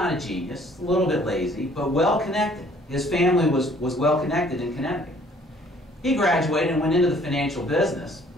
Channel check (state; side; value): normal; both; correlation 0.58